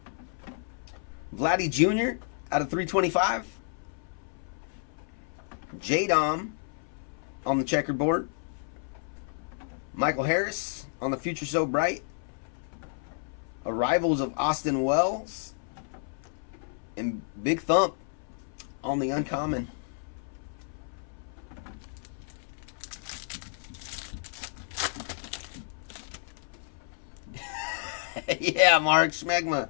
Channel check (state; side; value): silent; right; 57 dB below the other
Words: Vladdy Jr. out of 325. J-Dom on the checkerboard. Michael Harris on the Future So Bright. Arrivals of Austin Wells. And Big Thump on the uncommon. Yeah, Mark Smegma.